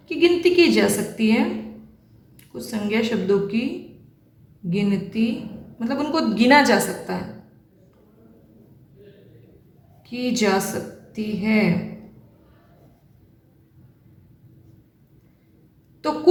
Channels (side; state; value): both; identical; correlation 1.00